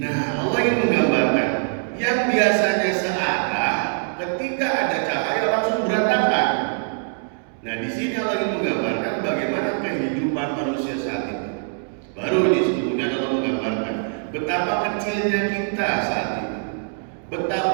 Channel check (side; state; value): left; silent; 63 dB below the other